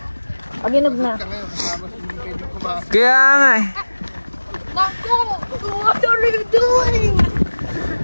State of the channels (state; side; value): inverted; both; correlation -1.00